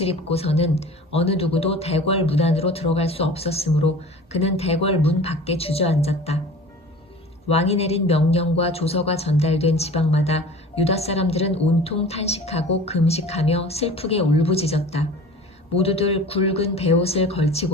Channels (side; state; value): both; normal; correlation 0.41